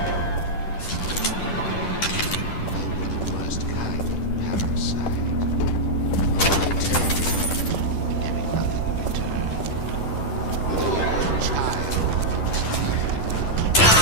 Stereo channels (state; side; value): late; right; 10 ms